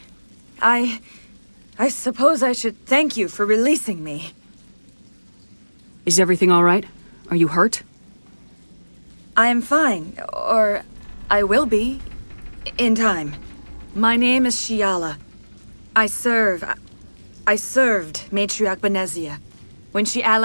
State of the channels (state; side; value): inverted; both; correlation -1.00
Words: I suppose I should thank you for releasing me. Is everything all right? Are you hurt? I am fine, or I will be, in time. My name is Shiala. I served Matriarch Benezia. When she